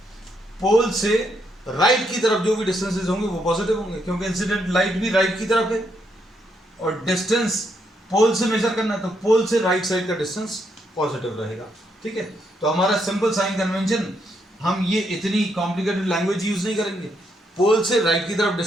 पोल से राइट की तरफ जो भी डिस्टेंसेस होंगे वो पॉजिटिव होंगे, क्योंकि इंसिडेंट लाइट भी राइट की तरफ है और डिस्टेंस पोल से मेजर करना, तो पोल से राइट साइड का डिस्टेंस पॉजिटिव रहेगा। ठीक है, तो हमारा सिंपल साइन कन्वेंशन, हम ये इतनी कॉम्प्लिकेटेड लैंग्वेज यूज नहीं करेंगे। पोल से राइट की तरफ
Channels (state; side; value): normal; both; correlation 0.77